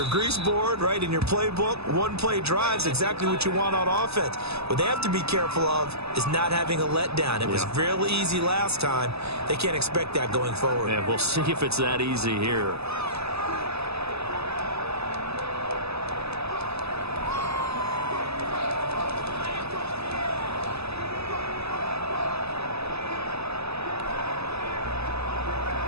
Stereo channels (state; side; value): late; left; 0.79 ms